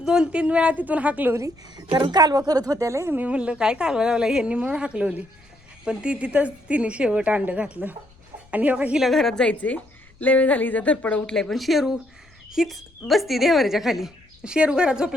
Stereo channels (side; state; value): left; noise; rumble, 29 dB below the sound